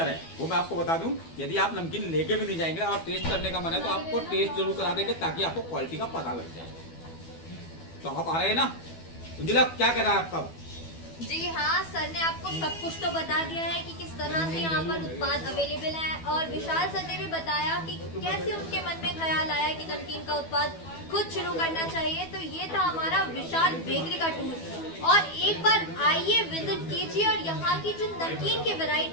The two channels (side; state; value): right; late; 12 ms